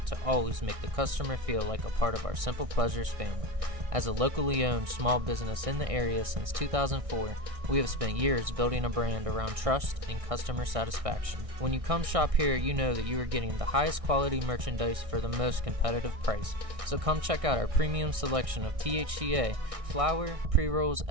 to always make the customer feel like a part of our Simple Pleasures family. As a locally owned small business in the area since 2004, we have spent years building a brand around trust and customer satisfaction. When you come shop here, you know that you are getting the highest quality merchandise for the most competitive price. So come check out our premium selection of THCA, flower, pre-rolls,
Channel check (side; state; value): left; late; 1.6 ms